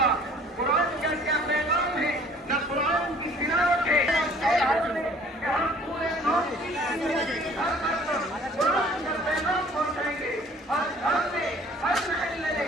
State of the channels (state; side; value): normal; both; correlation 0.53